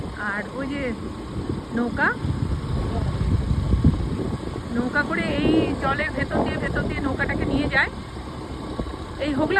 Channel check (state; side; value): identical; both; correlation 1.00